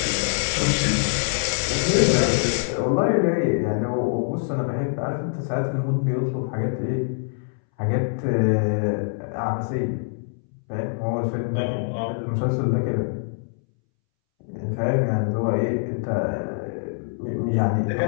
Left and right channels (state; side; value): silent; right; 62 dB below the other